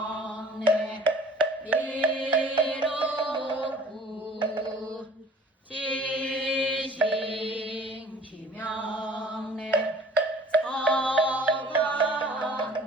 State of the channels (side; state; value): both; normal; correlation 0.50